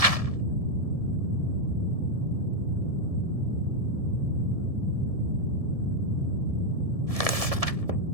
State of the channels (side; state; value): left; late; 1.7 ms